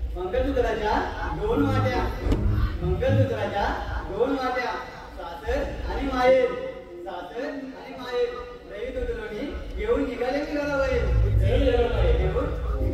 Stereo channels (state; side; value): identical; both; correlation 1.00